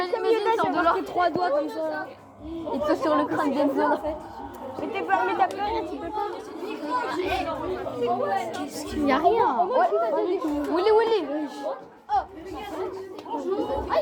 comme Yoda, j'ai marqué 3 doigts comme ça. Et toi sur le crâne d'Enzo en fait. Mais t'as pleuré, tu peux pas. Il n'y a rien. Willy. Ah,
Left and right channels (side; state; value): both; identical; correlation 1.00